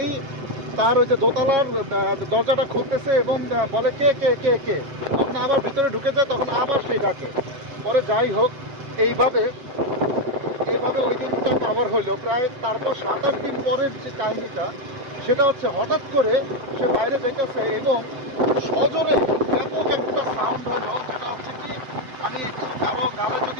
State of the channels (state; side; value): late; left; 7.8 ms